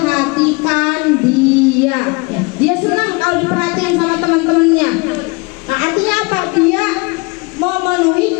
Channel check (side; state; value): right; quieter; 27.9 dB